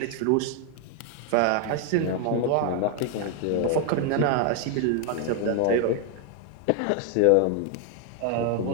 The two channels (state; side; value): different; both; correlation 0.01